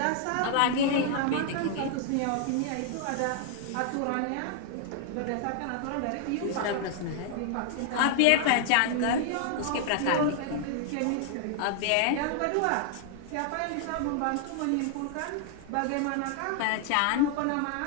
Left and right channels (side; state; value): both; different; correlation 0.00